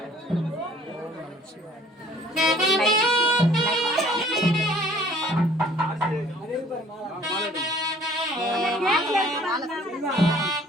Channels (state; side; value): normal; both; correlation 0.55